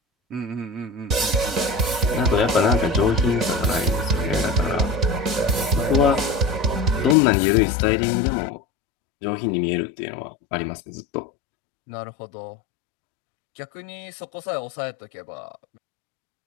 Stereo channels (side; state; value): right; drops out; at 7.2 s